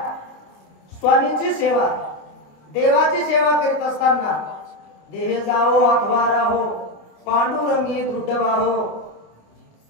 स्वामींची सेवा देवाची सेवा करीत असताना देह जावो अथवा राहो पांडुरंगी दृढ वाहो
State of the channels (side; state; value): right; late; 27 ms